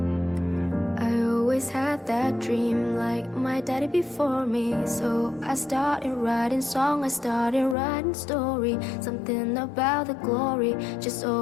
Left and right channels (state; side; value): drops out; right; at 7.8 s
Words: Had that dream like my daddy before me. So I started writing song, I started writing story. Something about the glory just